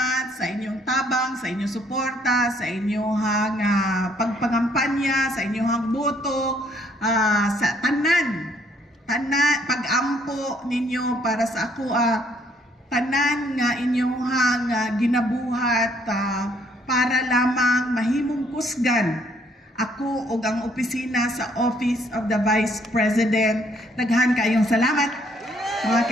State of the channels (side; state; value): both; normal; correlation 0.66